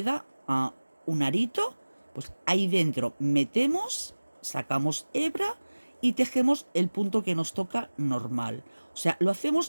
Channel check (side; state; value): both; inverted; correlation -1.00